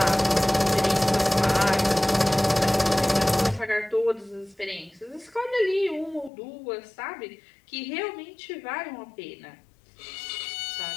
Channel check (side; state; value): right; drops out; at 6.3 s